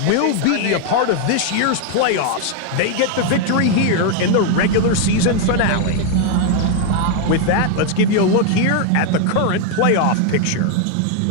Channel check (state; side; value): different; both; correlation 0.01